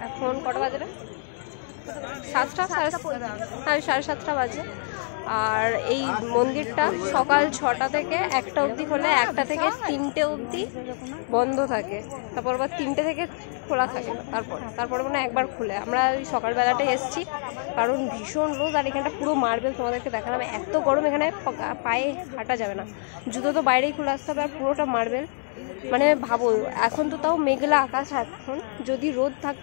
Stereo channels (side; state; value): right; silent; 61 dB below the other